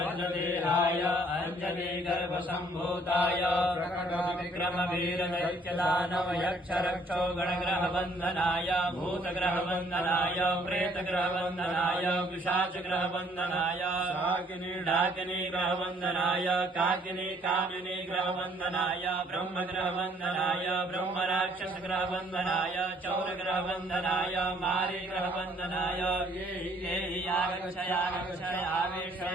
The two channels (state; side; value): normal; both; correlation 0.62